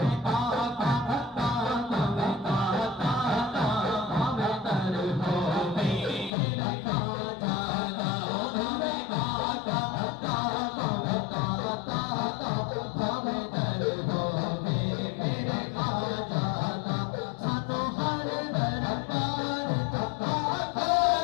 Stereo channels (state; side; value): drops out; right; at 6.3 s